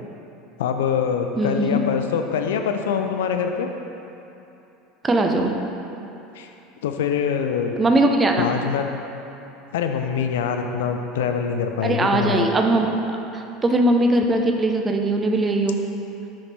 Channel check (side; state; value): both; normal; correlation 0.37